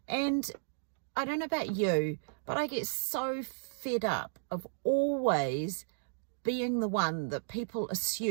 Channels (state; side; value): silent; left; digital silence